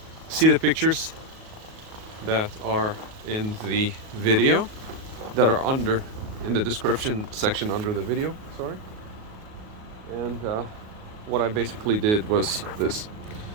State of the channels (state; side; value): late; left; 38 ms